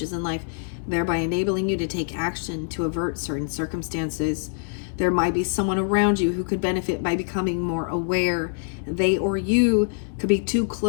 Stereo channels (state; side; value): silent; right; digital silence